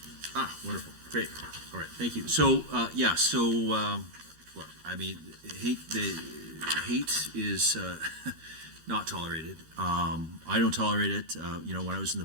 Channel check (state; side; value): late; left; 13 ms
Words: wonderful. Great. All right. Thank you. So, look, I mean, hate is not tolerated. I don't tolerate it. When I was in the